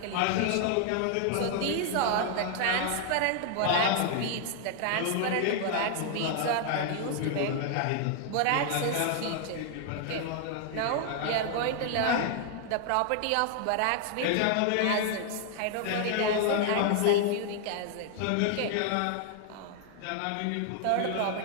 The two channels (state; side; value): different; both; correlation 0.00